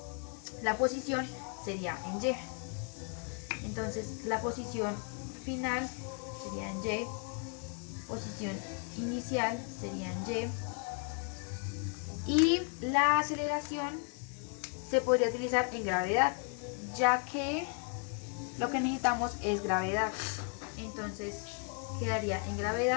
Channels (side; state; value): right; quieter; 38.6 dB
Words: la posición, sería en Y. Entonces la posición final sería en Y, posición inicial sería en y la aceleración se podría utilizar en gravedad, ya que lo que necesitamos es gravedad. Entonces quedaría en